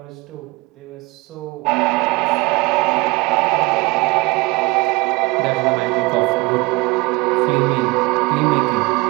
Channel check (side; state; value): left; quieter; 24.2 dB